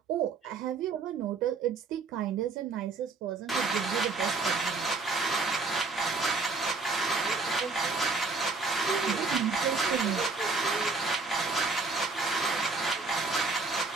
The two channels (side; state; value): left; quieter; 4.1 dB